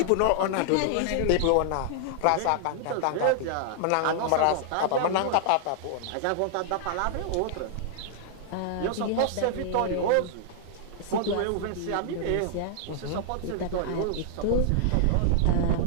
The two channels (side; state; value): both; different; correlation -0.01